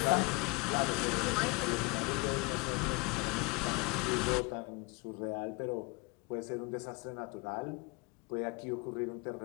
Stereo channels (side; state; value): right; quieter; 28.3 dB